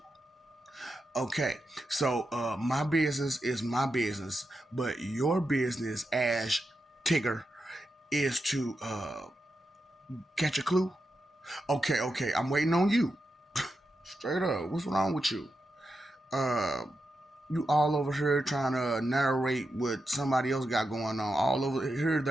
Okay, so my business is my business, but your business as Tigger is to catch a clue. Okay, okay, I'm waiting on you. Straight up, what's wrong with you? Uh, you all over here trying to narrate what somebody else got going on. All over here,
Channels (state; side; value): normal; both; correlation 0.88